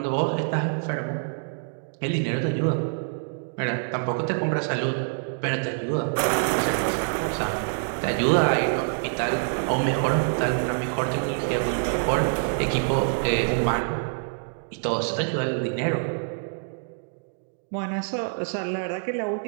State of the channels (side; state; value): left; silent; digital silence